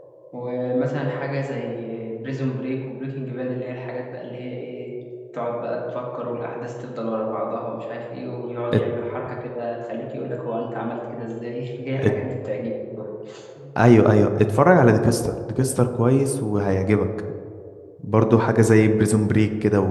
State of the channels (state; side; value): identical; both; correlation 1.00